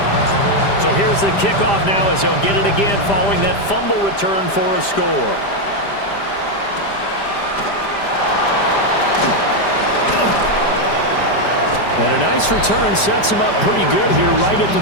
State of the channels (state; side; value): late; right; 5.0 ms